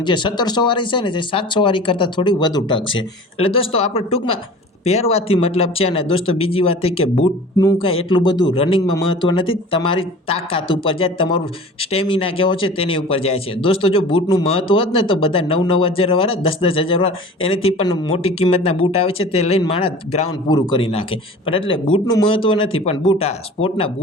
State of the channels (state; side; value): normal; both; correlation 0.40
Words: જે 1700 વાળી છે ને, જે 700 વાળી કરતાં થોડી વધુ ટકશે. એટલે દોસ્તો આપણે ટૂંકમાં પહેરવાથી મતલબ છે. અને દોસ્તો બીજી વાત એ કે બૂટનું કાંઈ એટલું બધું રનિંગમાં મહત્વ નથી, તમારી તાકાત ઉપર જાય, તમારું સ્ટેમિના કેવો છે તેની ઉપર જાય છે. દોસ્તો જો બૂટનું મહત્વ હોત ને તો બધા 9-9 હજાર વાળા, 10-10 હજાર વાળા, એનાથી પણ મોટી કિંમતના બૂટ આવે છે, તે લઈને માણસ ગ્રાઉન્ડ પૂરું કરી નાખે. પણ એટલે બૂટનું મહત્વ નથી, પણ બૂટ આ સ્પોર્ટના